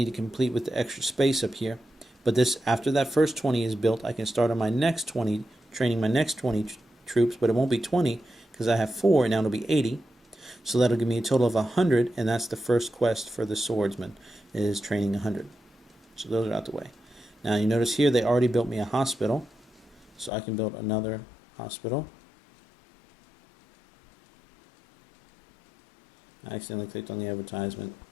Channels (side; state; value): right; drops out; at 20.3 s